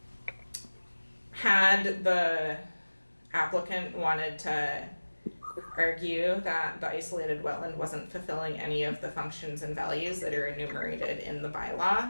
Had the applicant wanted to argue that the isolated wetland wasn't fulfilling any of the functions and values that are enumerated in the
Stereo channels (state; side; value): inverted; both; correlation -1.00